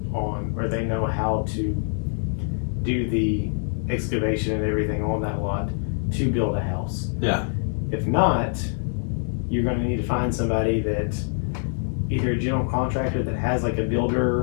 on, or they know how to do the excavation and everything on that lot to build a house. Yeah. If not, you're going to need to find somebody that, either a general contractor that has like a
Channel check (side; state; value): right; silent; digital silence